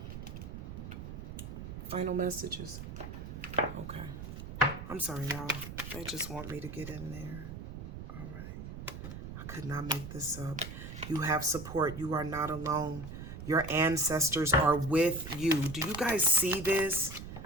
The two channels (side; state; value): right; noise; rumble, 9 dB below the sound